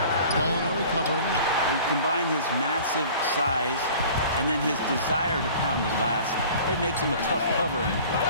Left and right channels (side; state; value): both; inverted; correlation -0.46